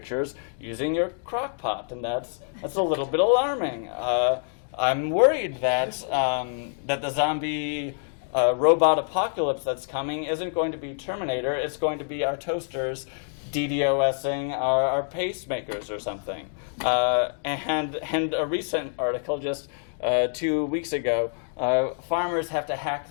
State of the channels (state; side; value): silent; right; digital silence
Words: using your crock pot, and that's a little bit alarming. I'm worried that the zombie robot apocalypse that's coming isn't going to be Terminator. It's going to be our toasters DDoSing our pacemakers or something. And a recent article just 2 weeks ago, farmers have to hack